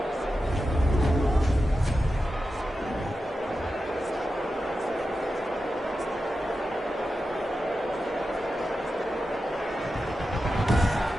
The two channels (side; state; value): both; normal; correlation 0.91